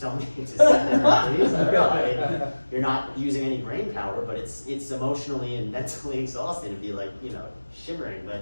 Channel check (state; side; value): inverted; both; correlation -1.00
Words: me to sit there and freeze. I don't know. I mean, you're not using any brain power, but it's emotionally and mentally exhausting to be like, you know, shivering.